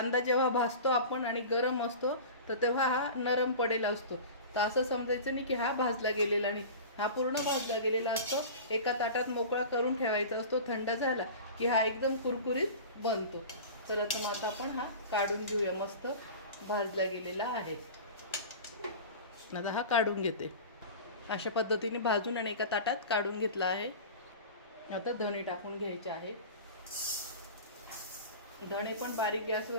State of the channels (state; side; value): inverted; both; correlation -0.35